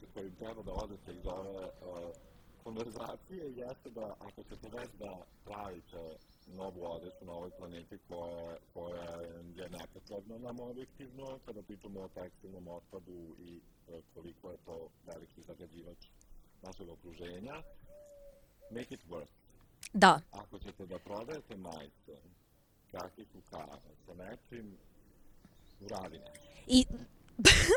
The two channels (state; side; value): identical; both; correlation 1.00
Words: koji treba da odete iz ove konverzacije jeste da ako ćete već da pravite novu odeću na ovoj planeti koja je nepotrebna nam objektivno, kada pričamo o tekstilnom otpadu i koliko je to veliki zagađivač našeg okruženja, make it work. Da. Ako ćete da prodajete majice, kakicu kave, sa nečim, uradi nešto. I